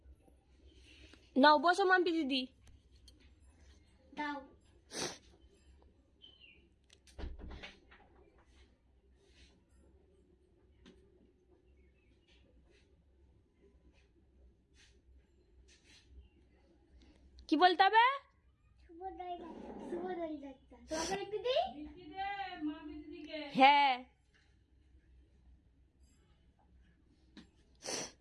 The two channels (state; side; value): identical; both; correlation 1.00